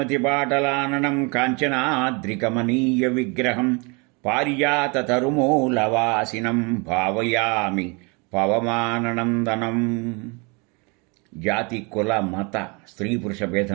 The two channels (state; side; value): quieter; left; 30.4 dB